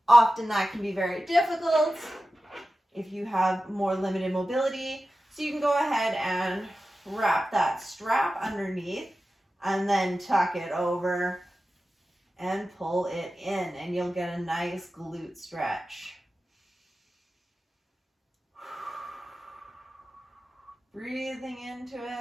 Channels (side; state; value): both; normal; correlation 0.94